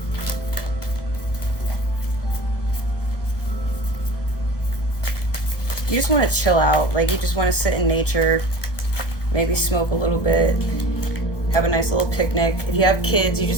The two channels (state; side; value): late; right; 1.1 ms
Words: You just want to chill out. Like, you just want to sit in nature, maybe smoke a little bit, have a nice little picnic. If you have kids, you